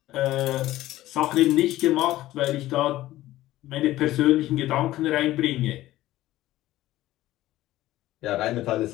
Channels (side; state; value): right; quieter; 15.6 dB